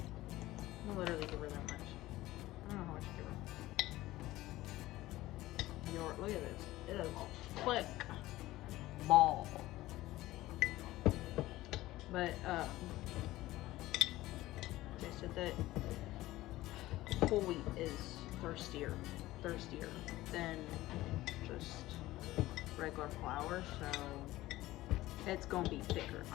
I'll literally give her that much. I don't know how much to give her. Look at this. It is a thick ball. But they said that whole wheat is thirstier than just regular flour, so it's gonna be thicker.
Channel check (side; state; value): right; quieter; 16.9 dB